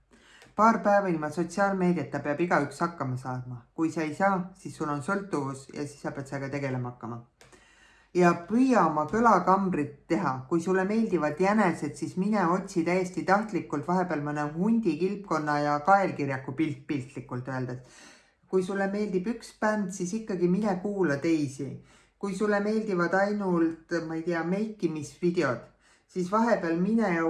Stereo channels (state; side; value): identical; both; correlation 1.00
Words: Paar päeva ilma sotsiaalmeediata peab igaüks hakkama saama. Kui sa ei saa, siis sul on sõltuvus ja siis sa pead sellega tegelema hakkama. Ja püüa oma kõlakambrit teha. Kui sulle meeldivad jänesed, siis mine otsi täiesti tahtlikult vahepeal mõne hundi, kilpkonna ja kaelkirjaku piltlikult öeldes. Kui sulle meeldib üks bänd, siis ikkagi mine kuula teisi. Kui sulle meeldivad ainult, ma ei tea, meikimisvideod, siis vahepeal mine ja